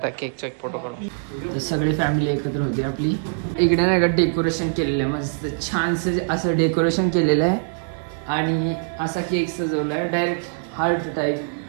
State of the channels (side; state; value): left; silent; 64 dB below the other